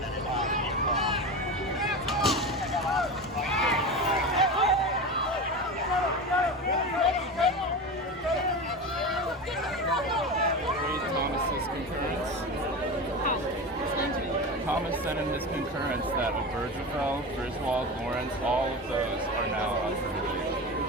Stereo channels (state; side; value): normal; both; correlation 0.25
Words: Thomas sent in his concurrence that Obergefell, Griswold, Lawrence, all of those are now